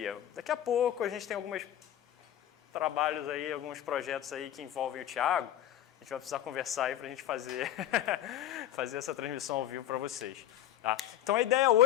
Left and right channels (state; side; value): quieter; right; 11.9 dB